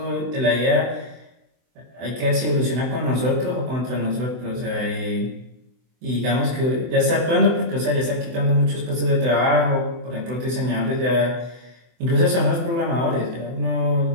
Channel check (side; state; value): left; late; 24 ms